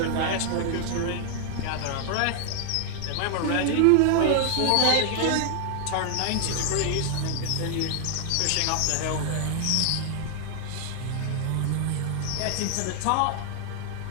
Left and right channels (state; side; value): different; both; correlation 0.00